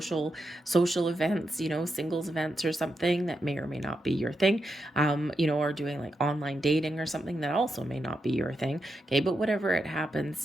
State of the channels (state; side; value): normal; both; correlation 0.85